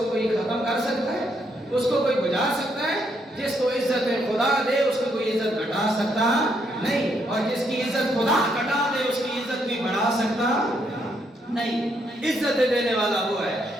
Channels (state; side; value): normal; both; correlation 0.75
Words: کوئی ختم کر سکتا ہے؟ اس کو کوئی بجھا سکتا ہے؟ جس کو عزت خدا دے اس کو کوئی عزت گھٹا سکتا نہیں، اور جس کی عزت خدا گھٹا دے اس کی عزت بھی بڑھا سکتا نہیں. عزت دینے والا وہ ہے،